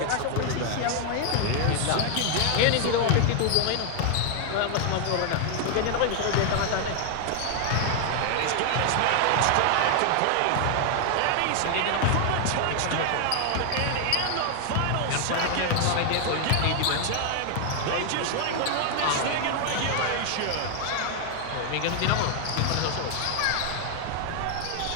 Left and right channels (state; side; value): different; both; correlation 0.00